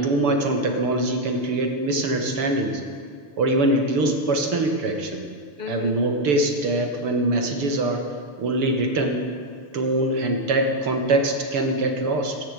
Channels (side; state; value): left; late; 6.8 ms